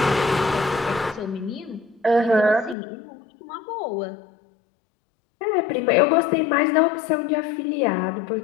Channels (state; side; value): drops out; right; at 2.8 s